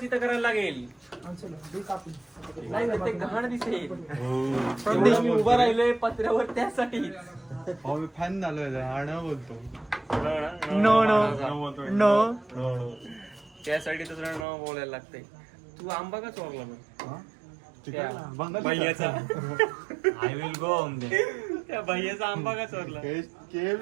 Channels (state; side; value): drops out; left; at 14.5 s